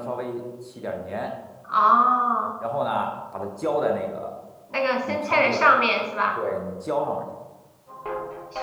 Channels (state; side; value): identical; both; correlation 1.00